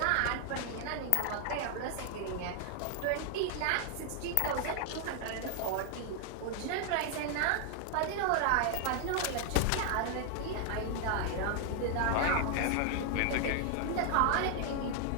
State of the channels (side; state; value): both; different; correlation 0.00